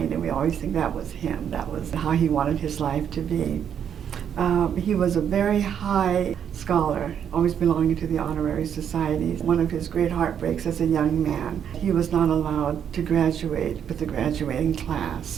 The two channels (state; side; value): quieter; left; 8.6 dB